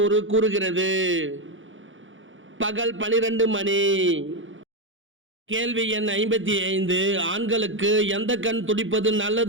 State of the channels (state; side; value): late; left; 0.56 ms